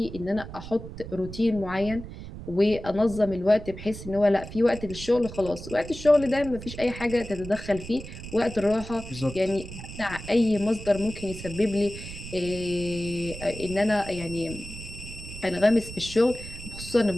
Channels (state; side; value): noise; right; rumble, 12 dB below the sound